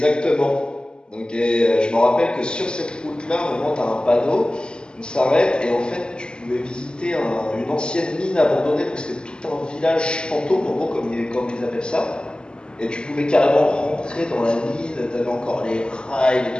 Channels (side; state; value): right; late; 0.049 ms